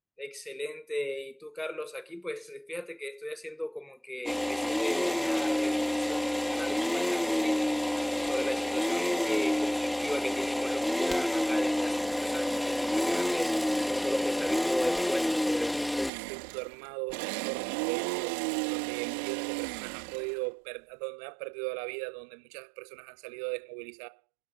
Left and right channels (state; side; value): drops out; left; at 16.1 s